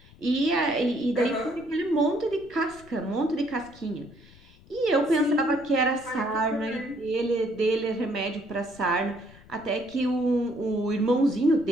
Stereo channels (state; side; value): noise; left; rumble, 24 dB below the sound